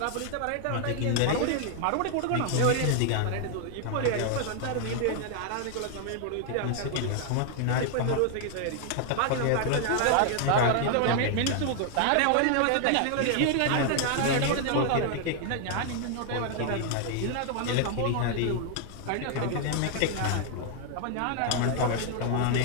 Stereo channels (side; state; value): both; different; correlation 0.00